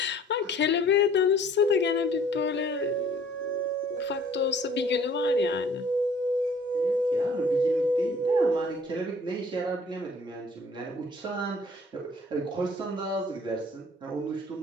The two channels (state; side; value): normal; both; correlation 0.54